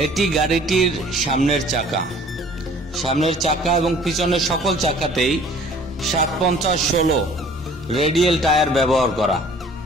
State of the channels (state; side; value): normal; both; correlation 0.52